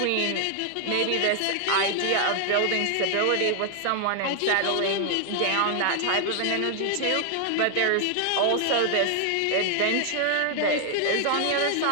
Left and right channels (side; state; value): both; different; correlation 0.00